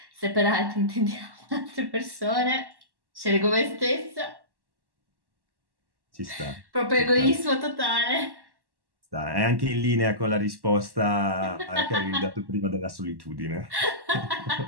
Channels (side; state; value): left; late; 1.1 ms